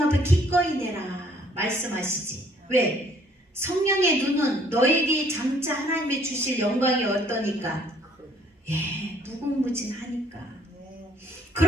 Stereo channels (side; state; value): both; normal; correlation 0.61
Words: 앞에 기꺼이 내라 말씀하시지. 왜? 성령의 눈은 너에게 장차 하나님이 주실 영광이 어떠니까? 무궁무진하니까.